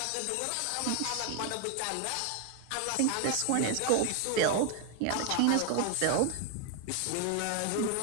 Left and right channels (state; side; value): different; both; correlation 0.01